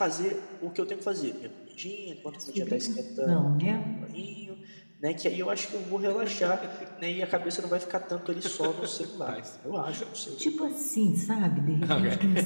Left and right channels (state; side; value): inverted; both; correlation -1.00